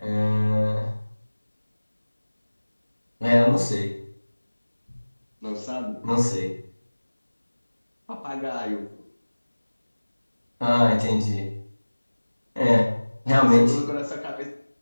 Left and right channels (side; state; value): both; inverted; correlation -1.00